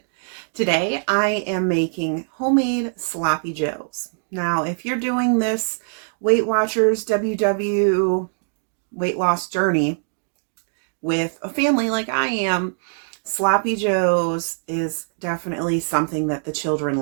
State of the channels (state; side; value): silent; left; digital silence